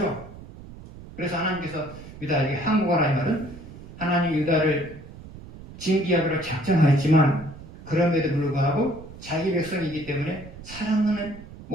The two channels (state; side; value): noise; right; rumble, 16 dB below the sound